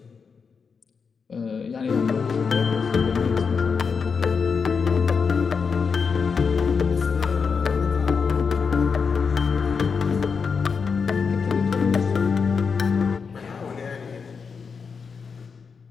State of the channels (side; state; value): right; quieter; 5.6 dB